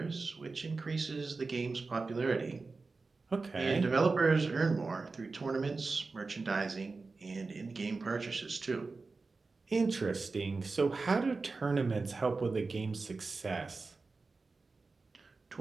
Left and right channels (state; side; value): quieter; left; 4.0 dB